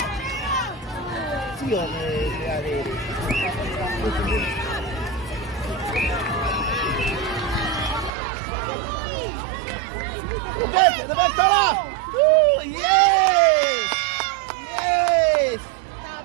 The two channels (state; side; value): drops out; left; at 8.1 s